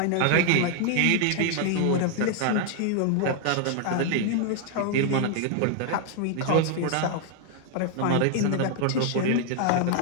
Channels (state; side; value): different; both; correlation 0.00